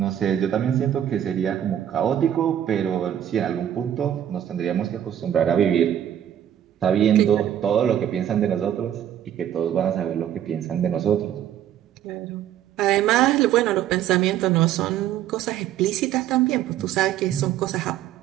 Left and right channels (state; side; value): quieter; left; 10.7 dB